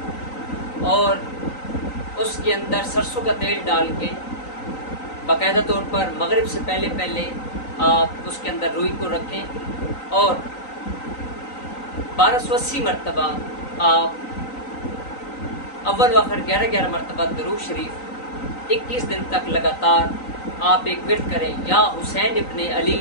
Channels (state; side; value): late; right; 3.9 ms